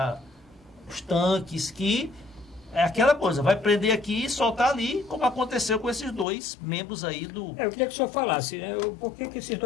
os tanques, que é aquela coisa, vai prender aqui e soltar ali, como aconteceu com esses dois membros aí do... Eu queria que o senhor falasse, né, por que esses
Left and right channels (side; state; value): right; drops out; at 6.2 s